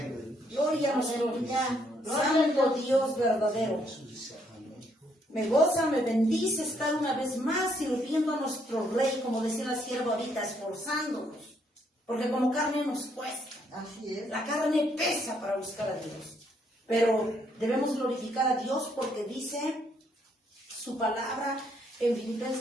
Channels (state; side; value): normal; both; correlation 0.71